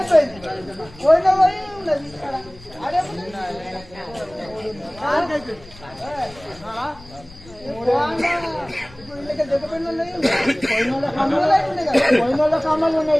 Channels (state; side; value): noise; left; rumble, 21 dB below the sound